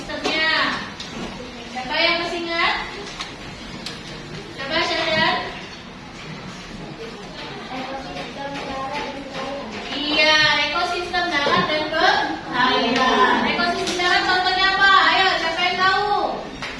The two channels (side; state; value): both; identical; correlation 1.00